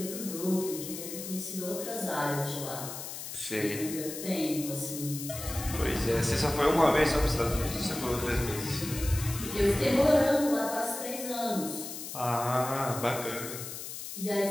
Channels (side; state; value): left; noise; hiss, 8 dB below the sound